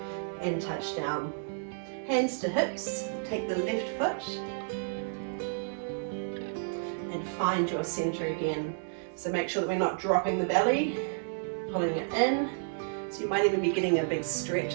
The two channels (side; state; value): left; silent; digital silence